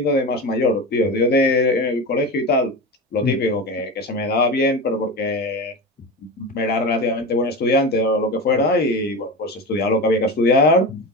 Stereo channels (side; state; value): both; normal; correlation 0.25